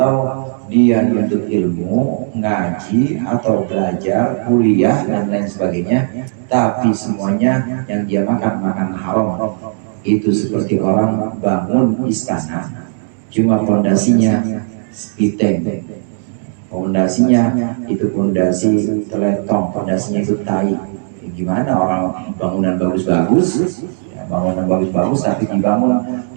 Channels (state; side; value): silent; left; 69 dB below the other